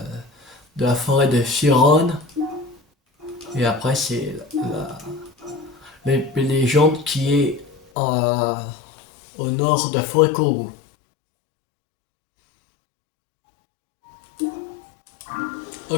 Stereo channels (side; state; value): right; drops out; at 7.8 s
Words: la forêt de Firon. Et après, c'est la légende qui est au nord de la forêt Kourou.